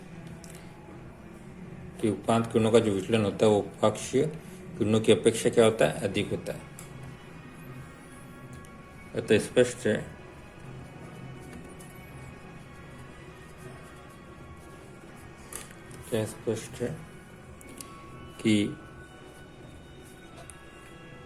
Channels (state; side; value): identical; both; correlation 1.00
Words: कि उपांत किरणों का जो विचलन होता है वो उपाक्षीय किरणों की अपेक्षा क्या होता है? अधिक होता है। अतः स्पष्ट है क्या? स्पष्ट है कि